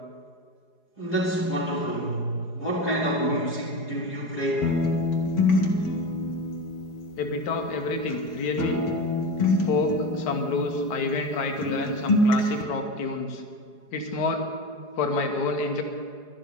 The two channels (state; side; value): late; right; 4.8 ms